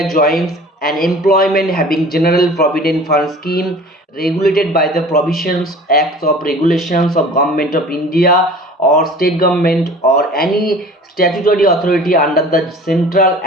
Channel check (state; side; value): normal; both; correlation 0.44